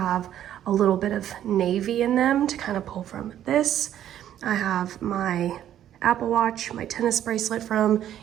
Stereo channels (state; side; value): quieter; left; 11.2 dB